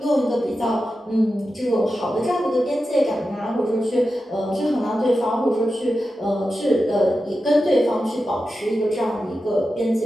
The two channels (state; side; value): normal; both; correlation 0.91